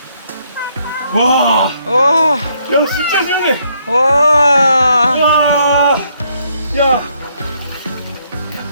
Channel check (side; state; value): both; inverted; correlation -0.71